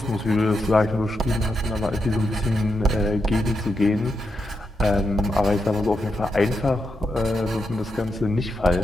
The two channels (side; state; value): both; normal; correlation 0.84